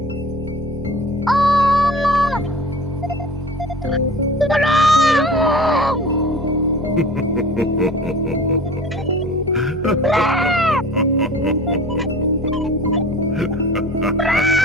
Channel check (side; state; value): both; normal; correlation 0.41